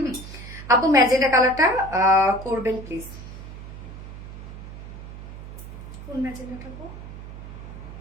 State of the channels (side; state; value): right; noise; hum, 12 dB below the sound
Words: আপু ম্যাজেন্টা কালারটা করবেন প্লিজ। কোন ম্যাজেন্টাটা আপু?